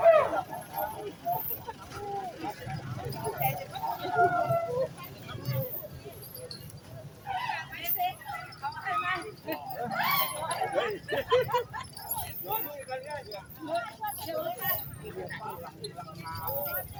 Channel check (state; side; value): identical; both; correlation 1.00